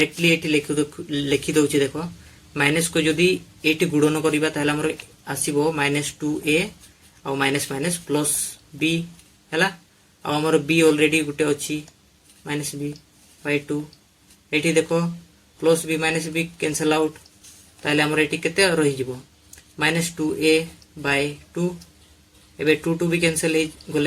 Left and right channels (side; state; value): both; identical; correlation 1.00